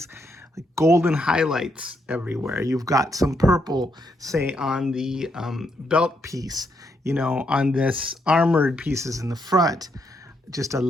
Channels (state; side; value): normal; both; correlation 0.77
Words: golden highlights everywhere. You've got some purple, say, on the belt piece, on this armored pieces in the front, just a